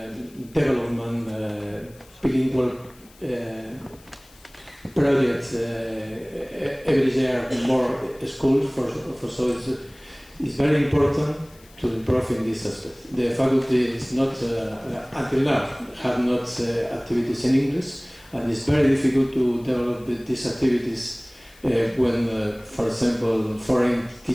development bilingual project every year more schools for so it's very important to improve in this aspect. The faculty is not until now have not activities in English, and it's very difficult to develop these activities when, for example, foreign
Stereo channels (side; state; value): left; noise; hiss, 26 dB below the sound